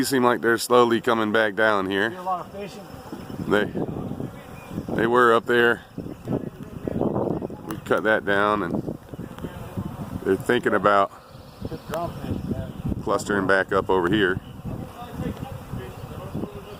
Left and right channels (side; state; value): both; identical; correlation 1.00